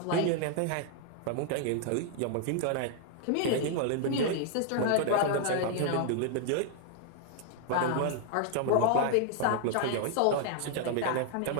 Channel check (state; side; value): different; both; correlation 0.00